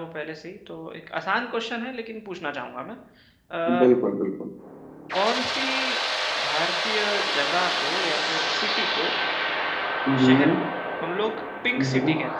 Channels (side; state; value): both; identical; correlation 1.00